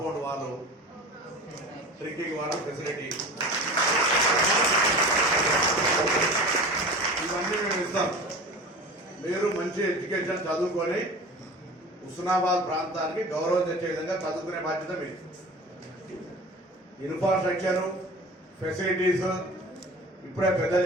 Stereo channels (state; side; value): normal; both; correlation 0.36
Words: వాళ్ళు, డ్రింకింగ్ వాటర్ ఫెసిలిటీ, ఇవన్నీ మేము ఇస్తాం. మీరు మంచి ఎడ్యుకేషన్ చదువుకొని హుస్నాబాద్ ప్రాంతానికి గౌరవం తెచ్చే విధంగా చదువుకునే బాధ్యత మీరు. ఇన్ఫ్రాస్ట్రక్చర్ ఫెసిలిటీస్ ఇప్పుడే పెద్దలు